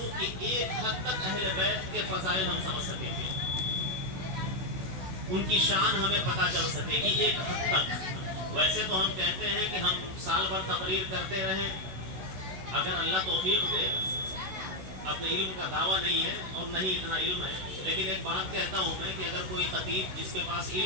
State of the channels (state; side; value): late; left; 16 ms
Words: کہ ایک حد تک اہل بیت کے فضائل ہم سمجھ سکیں گے، ان کی شان ہمیں پتہ چل سکے گی ایک حد تک۔ ویسے تو ہم کہتے ہیں کہ ہم سال بھر تقریر کرتے رہیں، اگر اللہ توفیق دے، اپنے علم کا دعویٰ نہیں ہے اور نہیں اتنا علم ہے، لیکن ایک بات کہتا ہوں میں کہ اگر کوئی خطیب جس کے پاس